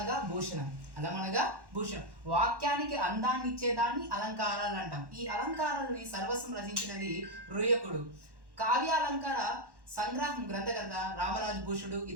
భూషణం, అలం అనగా భూషణం, వాక్యానికి అందాన్ని ఇచ్చేదాన్ని అలంకారాలు అంటాం. ఈ అలంకారాలని సర్వస్వం రచించినది రుయకుడు. కావ్యాలంకార సంగ్రహం గ్రంథకర్త రామరాజు భూషుడు,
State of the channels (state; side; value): late; left; 1.1 ms